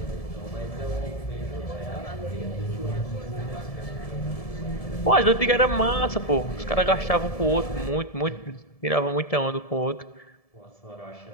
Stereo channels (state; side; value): late; right; 1.7 ms